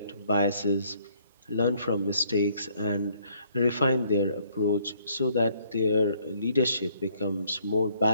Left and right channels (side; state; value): both; inverted; correlation -0.65